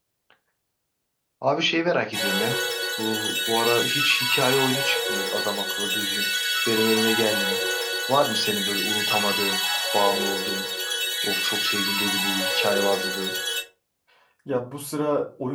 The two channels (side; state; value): both; identical; correlation 1.00